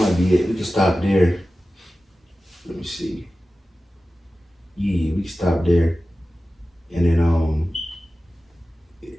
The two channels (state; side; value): normal; both; correlation 0.95